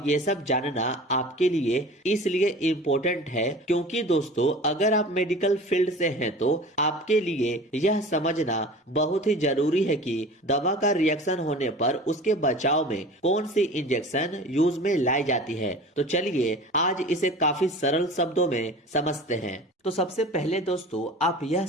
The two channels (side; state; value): both; normal; correlation 0.39